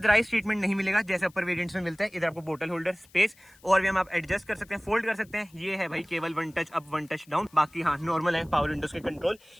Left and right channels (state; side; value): noise; left; hiss, 28 dB below the sound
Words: ट्रीटमेंट नहीं मिलेगा जैसे अपर वेरिएंट्स में मिलता है। इधर आपको बोतल होल्डर स्पेस और भी हम आप एडजस्ट कर सकते हैं, फोल्ड कर सकते हैं। ये है भाई केवल 1 टच अप 1 टच डाउन, बाकी हाँ नॉर्मल है पावर विंडोज के कंट्रोल।